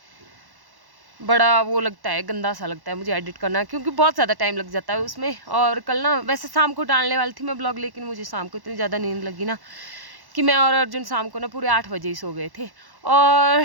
बड़ा वो लगता है, गंदा सा लगता है मुझे एडिट करना, क्योंकि बहुत ज़्यादा टाइम लग जाता है उसमें। और कल ना वैसे शाम को डालने वाली थी मैं ब्लॉग, लेकिन मुझे शाम को इतनी ज़्यादा नींद लगी ना कि मैं और अर्जुन शाम को ना पूरे 8 बजे ही सो गए थे। और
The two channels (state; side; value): late; left; 1.1 ms